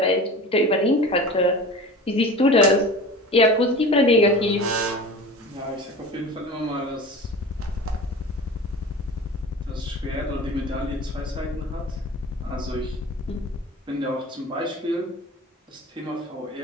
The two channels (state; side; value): normal; both; correlation 0.36